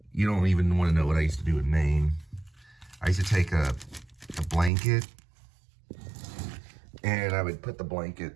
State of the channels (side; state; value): left; drops out; at 4.7 s